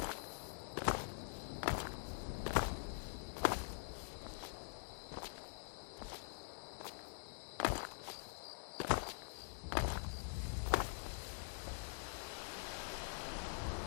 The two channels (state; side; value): silent; right; digital silence